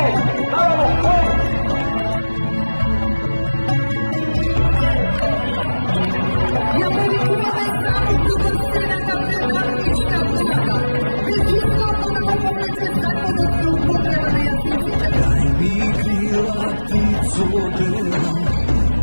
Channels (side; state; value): both; inverted; correlation -1.00